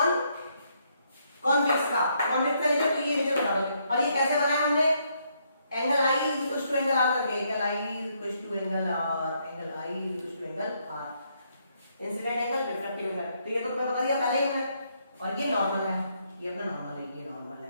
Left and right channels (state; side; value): inverted; both; correlation -0.74